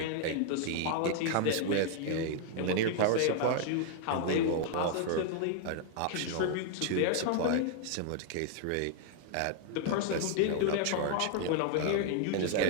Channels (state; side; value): different; both; correlation -0.01